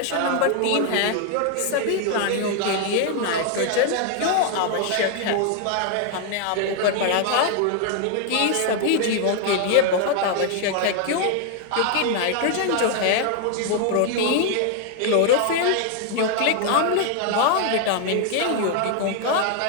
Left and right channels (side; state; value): both; different; correlation 0.00